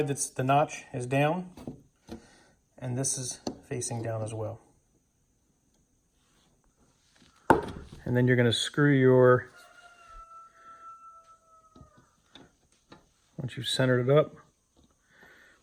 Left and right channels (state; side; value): identical; both; correlation 1.00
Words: that's the notch is down, and this is facing down as well. And then you're going to screw once you've centered it up.